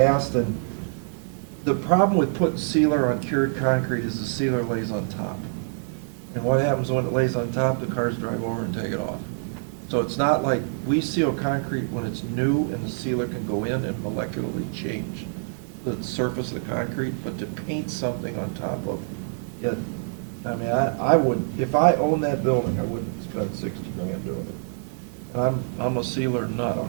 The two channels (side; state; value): left; silent; 59 dB below the other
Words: and the problem with putting sealer on cured concrete is the sealer lays on top. And what happens when it lays on top, the cars drive over and take it off. So it's not like, we seal concrete when it's new and the sealer can go in and molecularly change the surface of the concrete, but to paint something on top of it, I mean, I would, if I owned that building, I wouldn't spend 60 grand doing it. And I'm a sealer nut on